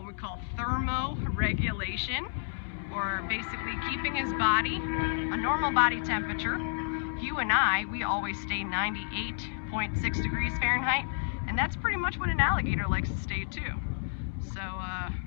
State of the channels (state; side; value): silent; right; digital silence